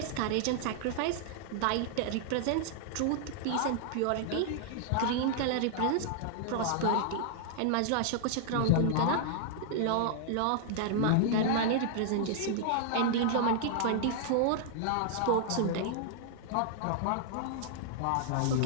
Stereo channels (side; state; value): both; different; correlation -0.01